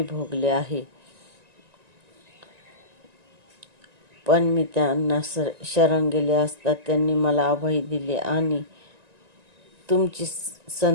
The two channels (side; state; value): left; late; 1.9 ms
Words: भोगले आहे. पण मी त्यांना शरण गेले असता त्यांनी मला अभय दिले आणि तुमची